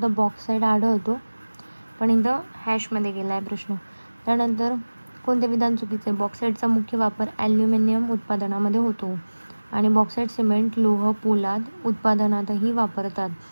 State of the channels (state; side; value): inverted; both; correlation -1.00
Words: तर बॉक्साईट आढळतो, पण इथं हॅशमध्ये गेला आहे प्रश्न. त्यानंतर कोणते विधान चुकीचे? बॉक्साईटचा मुख्य वापर ॲल्युमिनियम उत्पादनामध्ये होतो आणि बॉक्साईट सिमेंट, लोह, पोलाद उत्पादनातही वापरतात.